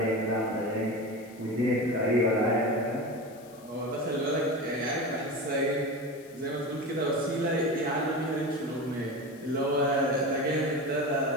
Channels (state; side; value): noise; left; hiss, 25 dB below the sound